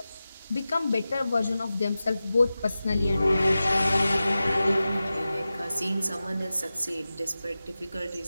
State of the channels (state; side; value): inverted; both; correlation -0.95